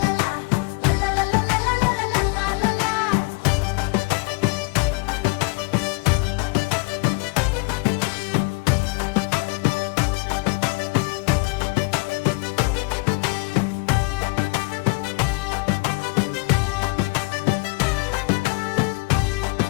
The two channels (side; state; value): right; quieter; 28.0 dB